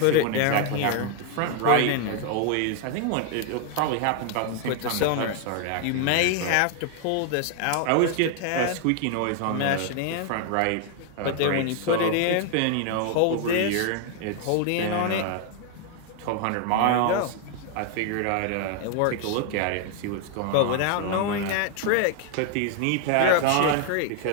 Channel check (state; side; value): different; both; correlation 0.00